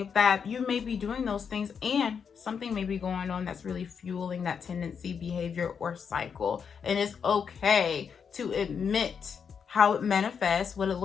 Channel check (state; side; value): quieter; right; 6.7 dB